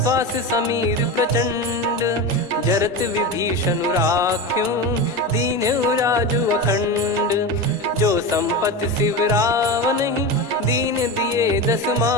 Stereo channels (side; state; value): both; normal; correlation 0.22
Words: श्वास समीर प्रचंड। जरत विभीषण राख्यूं, दीन्हु राजु अखंड। जो संपत्ति शिव रावण ही, दीन दिए दस